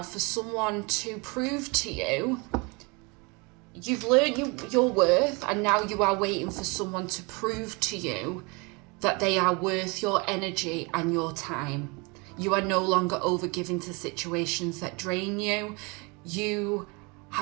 for someone to prove to you. You've learned your worth, and now you are waiting for someone to prove to you that they are worth your energy and your time. You are no longer overgiving to situations that drain you. You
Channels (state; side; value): quieter; left; 29.0 dB